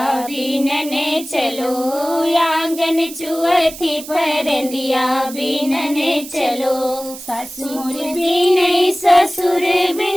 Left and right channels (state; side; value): noise; right; hiss, 13 dB below the sound